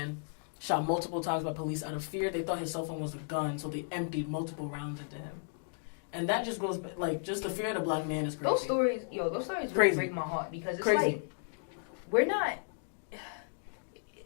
shot multiple times by police out of fear. They thought his cell phone was a gun, so they emptied multiple rounds into him. And that just goes, like, just the fear of the black man is crazy. Those stories really Crazy. break my heart because it's Crazy. like, we're not...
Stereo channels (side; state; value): right; silent; digital silence